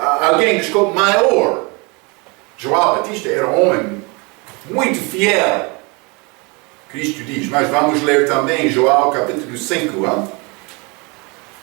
maior. João Batista era um homem muito fiel. Cristo diz, mas vamos ler também João capítulo 5.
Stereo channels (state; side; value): quieter; left; 29.2 dB